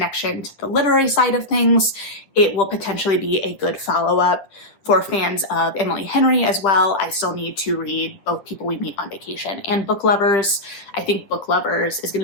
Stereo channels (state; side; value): late; right; 10 ms